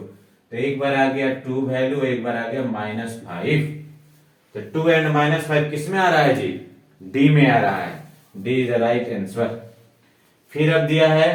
तो एक बार आ गया 2 वैल्यू, एक बार आ गया -5। तो 2 एंड -5 किस में आ रहा है जी, डी में आ रहा है, D is the right answer. फिर अब दिया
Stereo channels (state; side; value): identical; both; correlation 1.00